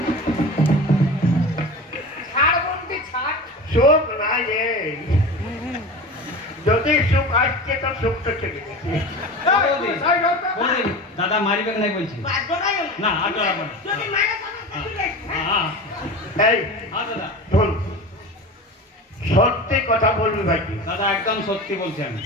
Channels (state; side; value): normal; both; correlation 0.31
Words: ছাড় বলতে ছাড়। চোখ নাই রে, যদি সুখ আসছে তো সুখ তো চলে গেছে। বৌদি, বৌদি, দাদা মারিবে নাই বলছি না আর ডরাবো না। যদি মারা তাহলে চলে আসবে। হ্যাঁ এই হ্যাঁ দাদা শোন, সত্যি কথা বলবি ভাইজি, দাদা একদম সত্যি বলছি আমি,